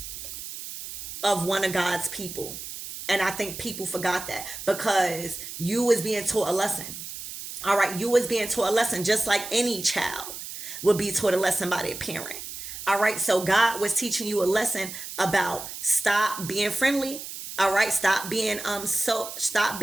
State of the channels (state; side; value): noise; right; hiss, 10 dB below the sound